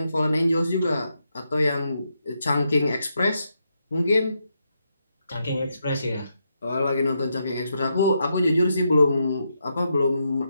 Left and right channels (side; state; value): both; inverted; correlation -0.82